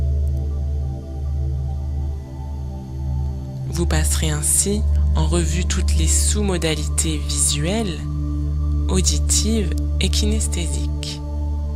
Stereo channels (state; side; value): identical; both; correlation 1.00